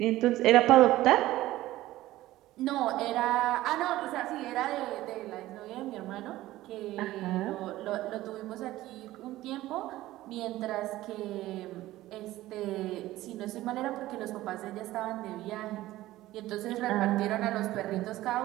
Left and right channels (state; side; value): quieter; left; 16.1 dB